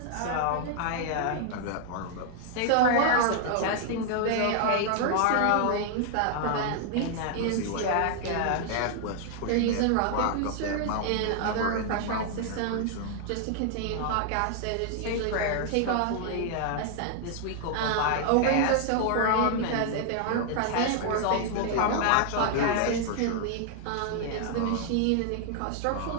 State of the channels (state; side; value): different; both; correlation 0.00